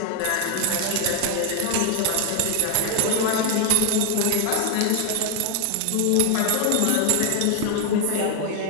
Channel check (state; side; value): different; both; correlation 0.01